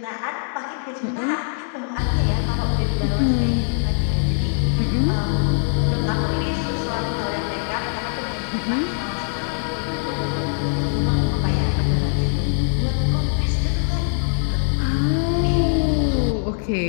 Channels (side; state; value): right; silent; digital silence